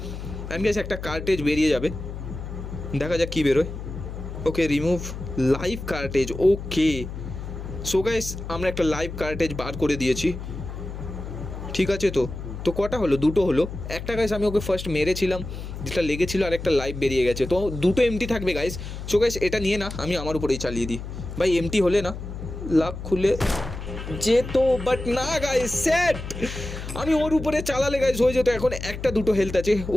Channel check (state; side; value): noise; left; hum, 8 dB below the sound